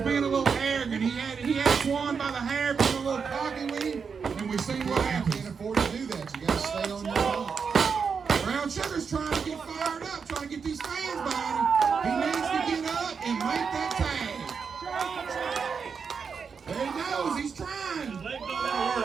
a little arrogant. He had Swan by the hair, being a little cocky with him, and we've seen what You can't happens. afford to do that. You got to stay on your feet. Brown Sugar's trying to get fired up, trying to get these fans behind him. He needs to get up and make that tag. There he goes. He's trying. His leg don't want to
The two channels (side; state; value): left; quieter; 5.9 dB